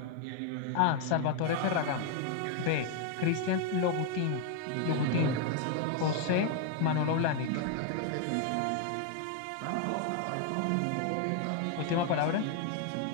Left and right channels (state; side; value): different; both; correlation 0.00